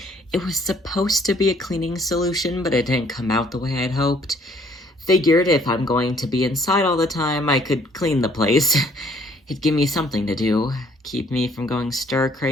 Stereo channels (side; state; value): both; normal; correlation 0.61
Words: It was supposed to be a cleaning solution, but it didn't come out the way I'd hoped. Figured if I'm going to be inside all the time, I could clean the place. It'd give me something to do, keep me from going